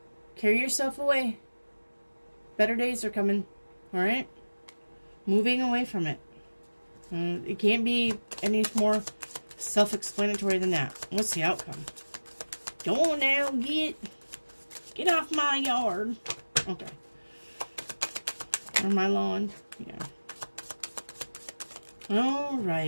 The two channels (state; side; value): inverted; both; correlation -1.00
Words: Carry yourself away. Better days are coming. All right? Moving away from it. It can't be any more self-explanatory than that. What's the outcome? Go on now. Get off my yard. Okay. Or my lawn. Yeah. All